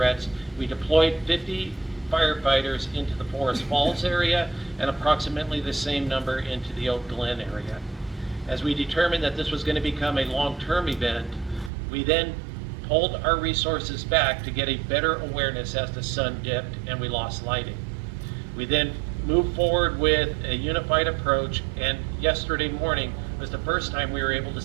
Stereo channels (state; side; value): drops out; left; at 11.7 s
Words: We deployed 50 firefighters into the Forest Falls area and approximately the same number into the Oak Glen area. As we determined that this was going to become a long-term event, we then pulled our resources back to get a better awareness as the sun dipped and we lost lighting. We then moved forward with a unified approach, and yesterday morning was the first time we were able to